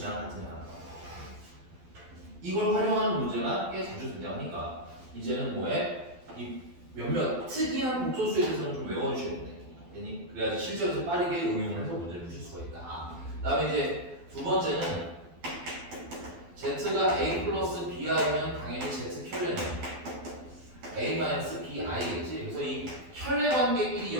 같은 애가 나와요. 이걸 활용하는 문제가 꽤 자주 등장하니까 이제는 뭐해? 이 몇몇 특이한 복소수에 대해서는 좀 외워주셔야 돼. 그래야지 실제로 빠르게 응용을 해서 문제를 푸실 수가 있다. 그 다음에 이제 두 번째는 Z가 A 플러스 BI면 당연히 Z 켤레는 A 마이너스 BI겠지. 그래서 이 켤레 관계끼리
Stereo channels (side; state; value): left; late; 12 ms